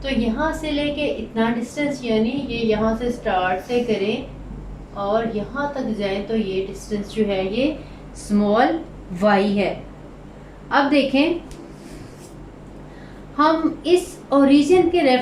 तो यहाँ से लेके इतना डिस्टेंस यानी ये यहाँ से स्टार्ट से करें और यहाँ तक जाएं तो ये डिस्टेंस जो है ये स्मॉल y है। अब देखें हम इस ओरिजिन के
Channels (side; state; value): both; identical; correlation 1.00